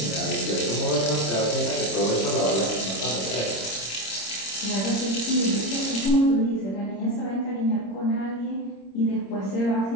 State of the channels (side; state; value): right; late; 26 ms